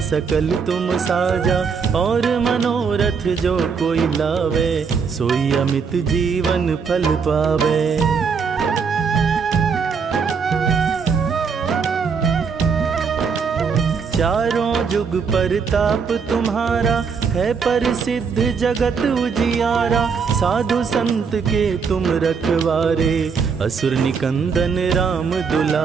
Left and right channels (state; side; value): quieter; left; 5.8 dB